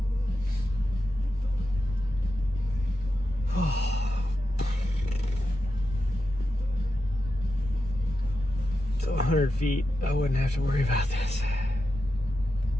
So 100 feet, I wouldn't have to worry about this.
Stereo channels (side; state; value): both; normal; correlation 0.89